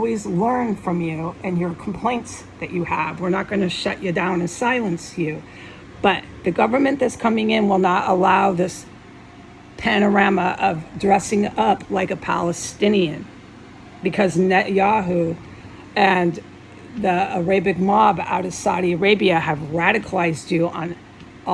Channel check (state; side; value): identical; both; correlation 1.00